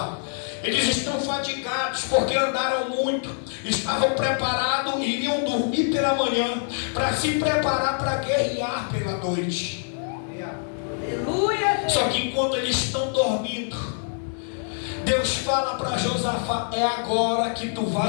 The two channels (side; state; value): right; silent; 62 dB below the other